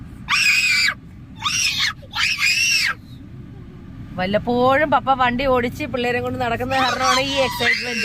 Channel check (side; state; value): both; identical; correlation 1.00